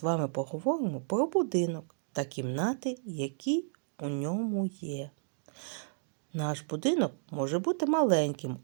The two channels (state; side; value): silent; left; digital silence